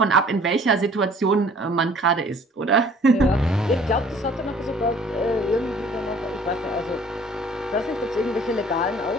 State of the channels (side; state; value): both; normal; correlation 0.53